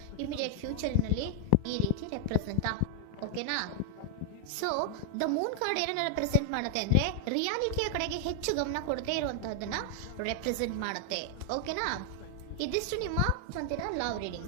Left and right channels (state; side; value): different; both; correlation 0.00